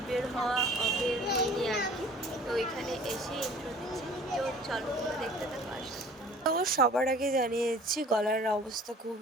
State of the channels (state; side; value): normal; both; correlation 0.48